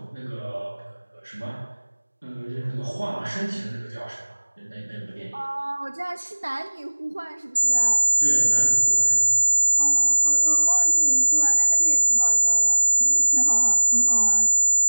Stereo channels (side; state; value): both; inverted; correlation -1.00